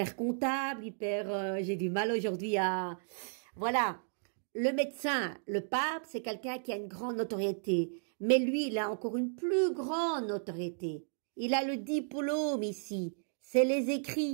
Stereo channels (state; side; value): silent; left; digital silence